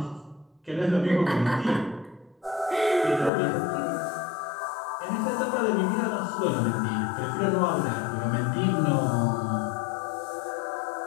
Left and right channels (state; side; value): drops out; right; at 3.3 s